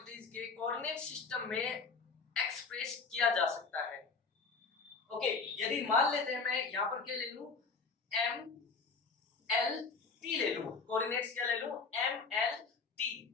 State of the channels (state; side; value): quieter; right; 4.7 dB